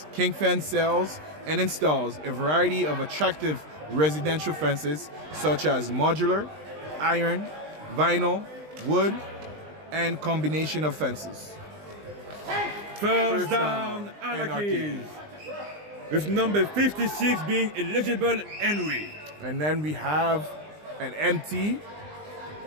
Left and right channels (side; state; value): left; late; 20 ms